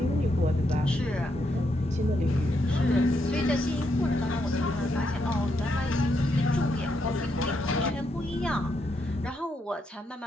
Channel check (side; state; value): both; normal; correlation 0.79